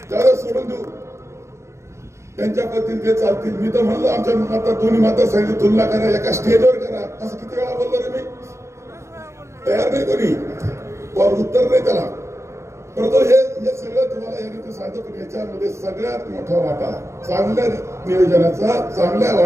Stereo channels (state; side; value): late; left; 0.14 ms